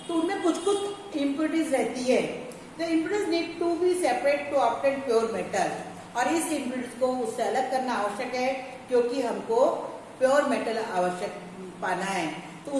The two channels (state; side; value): identical; both; correlation 1.00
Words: तो उनमें कुछ कुछ इम्प्योरिटीज रहती है. The impurities need to be separate to obtain pure metal. और इस इम्प्योरिटीज को उससे अलग करना आवश्यक है, क्योंकि हमको प्योर मेटल आवश्यक पाना है. तो